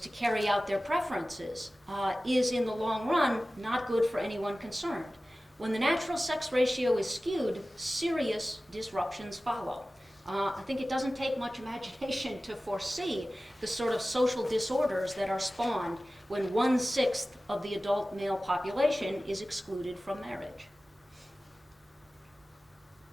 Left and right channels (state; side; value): normal; both; correlation 0.96